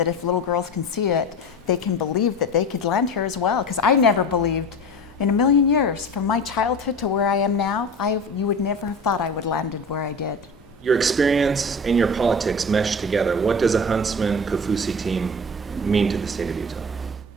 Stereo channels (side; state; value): both; normal; correlation 0.33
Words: if little girls can see it, they can believe that they could land here as well. Because I never believed in a million years, from my childhood to where I am now, you would never have thought I would landed where I did. Your experience and your politics mesh together. What does a Huntsman Kaufusi team mean to the state of Utah?